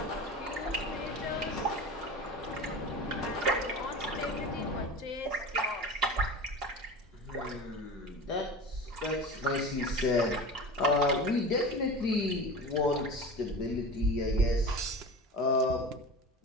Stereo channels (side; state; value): both; normal; correlation 0.32